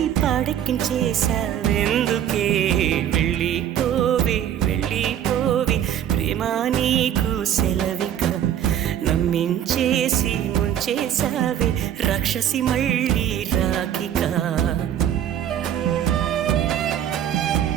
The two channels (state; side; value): quieter; left; 10.3 dB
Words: పాడెక్కించేశావెందుకే వెళ్ళిపోవే వెళ్ళిపోవే ప్రేమా నీకు సెలవిక నమ్మించేసి ముంచేశావే రాక్షసి మళ్ళీ రాకిక